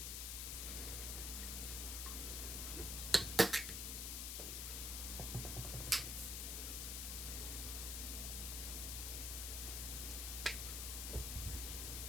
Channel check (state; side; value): noise; left; hiss, 1 dB below the sound